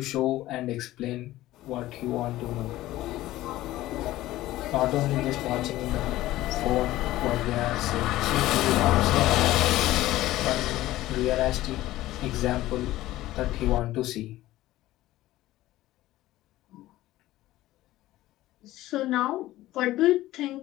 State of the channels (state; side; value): quieter; right; 16.0 dB